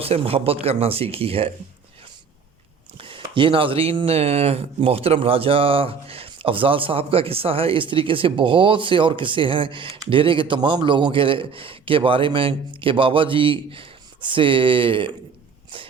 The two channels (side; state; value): left; quieter; 5.9 dB